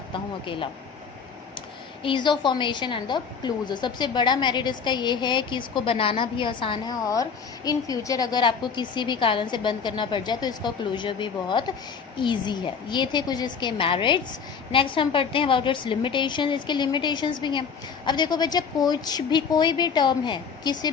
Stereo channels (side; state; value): right; quieter; 6.2 dB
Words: हूँ अकेला। Ease of formation and the closure. सबसे बड़ा मेरिट इसका ये है कि इसको बनाना भी आसान है और इन फ्यूचर अगर आपको किसी भी कारण से बंद करना पड़ जाए तो इसका क्लोजर भी बहुत ईजी है। ये थे कुछ इसके मेरिट्स। नेक्स्ट हम पढ़ते हैं अबाउट इट्स लिमिटेशन। इसके लिमिटेशंस भी हैं। अब देखो बच्चा, कोई भी टर्म है किसी